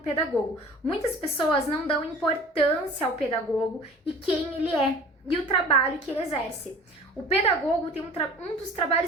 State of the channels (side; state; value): both; normal; correlation 0.43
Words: Muitas pessoas não dão importância ao pedagogo e quem ele é e o trabalho que ele exerce. O pedagogo tem um dos